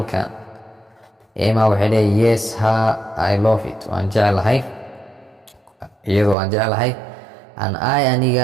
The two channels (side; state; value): left; drops out; at 6.4 s